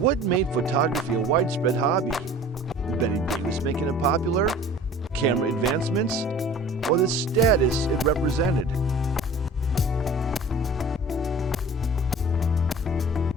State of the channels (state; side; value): normal; both; correlation 0.44